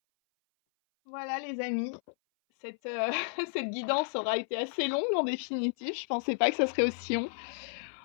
Voilà les amis, cette, cette guidance aura été assez longue en définitive. Je pensais pas que ça serait aussi long.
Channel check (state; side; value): silent; right; 56 dB below the other